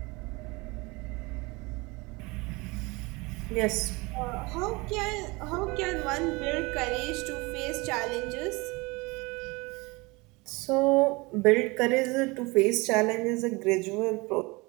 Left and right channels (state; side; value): quieter; left; 25.0 dB